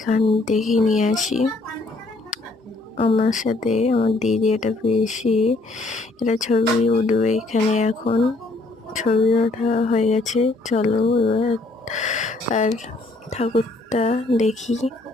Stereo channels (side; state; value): right; quieter; 3.1 dB